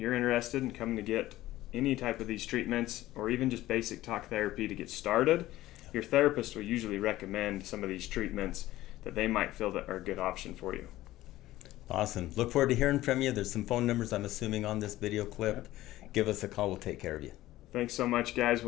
interested in coming to get any type of these treatments or even just basic talk therapy to get started, your therapist will usually recommend some of these treatments that they might feel that are a good option for you. Awesome. Look forward to hearing from you. There's some phone numbers, I'm assuming, on this video clip. Give us a call. We'll take care of you. Thanks so much, guys.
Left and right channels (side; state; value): right; quieter; 15.9 dB